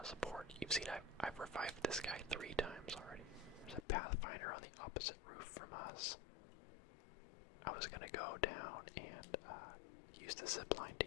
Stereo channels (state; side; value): drops out; right; at 3.9 s